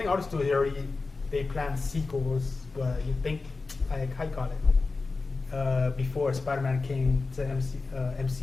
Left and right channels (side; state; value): right; quieter; 3.9 dB